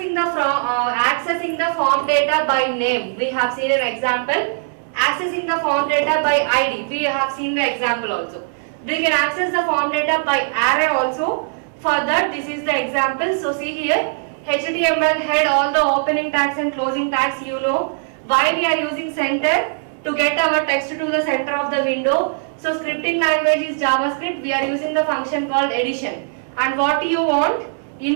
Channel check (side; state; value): left; silent; 66 dB below the other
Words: the form data by name, we have seen an example. Accessing the form data by ID, we have seen the example also. We can access the form data by array also. For that, this is the example. So see here, HTML head, all the opening tags and closing tags, you know. Why we are using center? To get our text to the center of the window. So scripting language is JavaScript. We are using the function called addition. And what you want?